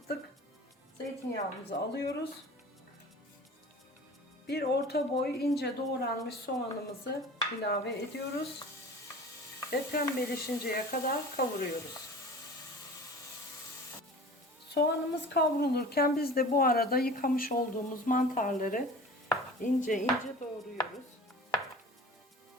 Zeytinyağımızı alıyoruz. Bir orta boy ince doğranmış soğanımızı ilave ediyoruz. Ve pembeleşinceye kadar kavuruyoruz. Soğanımız kavrulurken biz de bu arada yıkamış olduğumuz mantarları ince ince doğruyoruz.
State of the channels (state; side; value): normal; both; correlation 0.40